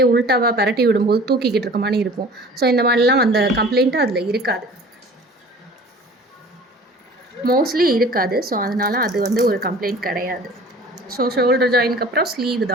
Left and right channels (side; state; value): both; normal; correlation 0.45